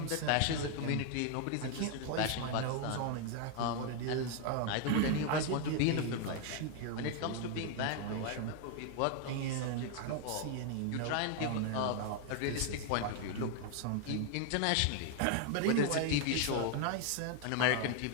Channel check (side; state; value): both; different; correlation 0.00